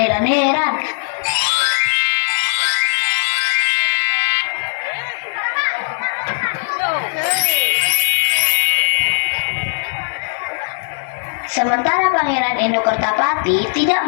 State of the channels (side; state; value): right; silent; digital silence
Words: Sementara Pangeran Endokertapati